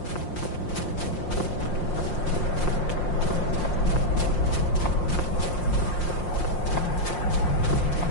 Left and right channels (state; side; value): late; right; 5.7 ms